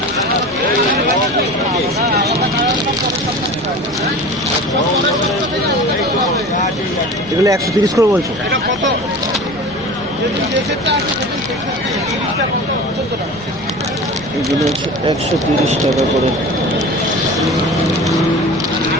এগুলো 130 করে বলছো? এগুলো হচ্ছে 130 টাকা করে।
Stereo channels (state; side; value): noise; right; rumble, 22 dB below the sound